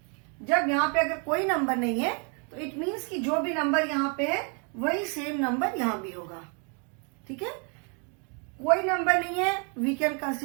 जब यहाँ पे अगर कोई नंबर नहीं है तो इट मीन्स कि जो भी नंबर यहाँ पे है वही सेम नंबर यहाँ भी होगा. ठीक है? कोई नंबर नहीं है, we can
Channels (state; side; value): quieter; left; 37.3 dB